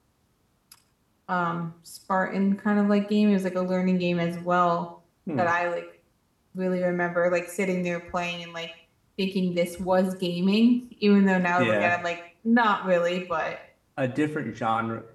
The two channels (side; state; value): both; identical; correlation 1.00